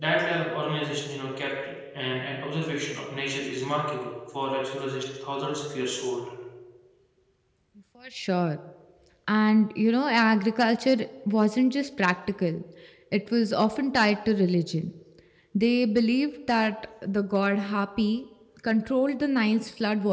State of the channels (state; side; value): identical; both; correlation 1.00